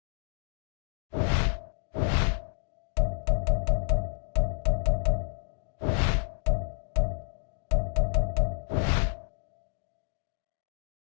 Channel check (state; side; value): silent; right; digital silence